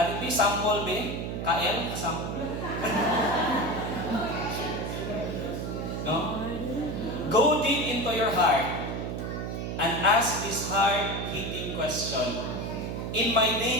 dito. Sample, be? KL? Sample? No? Go deep into your heart and ask this hard-hitting question. In my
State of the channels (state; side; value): noise; right; hum, 4 dB below the sound